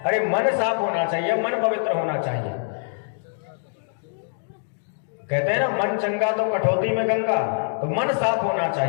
अरे मन साफ होना चाहिए, मन पवित्र होना चाहिए। कहते हैं ना मन चंगा तो कठौती में गंगा, तो मन साफ होना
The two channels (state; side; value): silent; right; digital silence